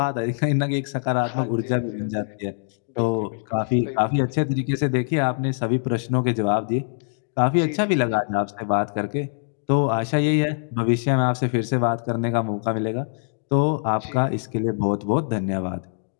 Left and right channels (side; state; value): right; silent; digital silence